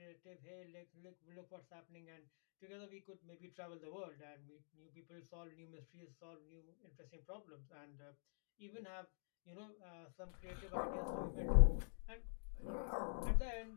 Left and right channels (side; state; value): right; silent; digital silence